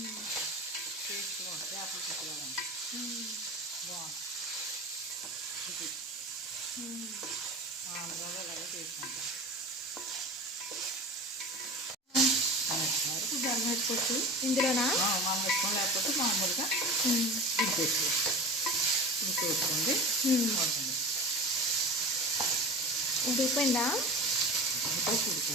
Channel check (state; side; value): normal; both; correlation 0.33